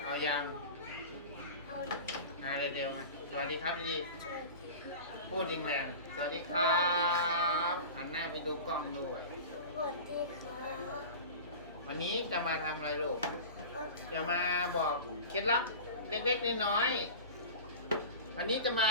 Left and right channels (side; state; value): both; inverted; correlation -0.34